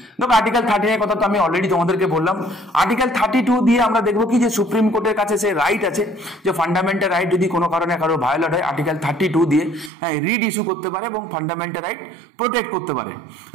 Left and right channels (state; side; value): drops out; left; at 9.9 s